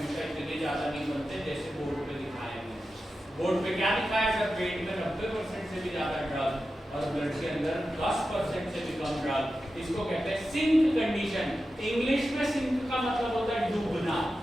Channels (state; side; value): normal; both; correlation 0.92